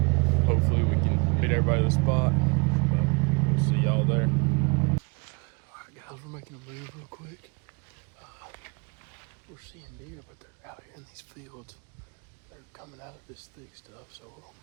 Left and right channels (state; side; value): quieter; left; 29.4 dB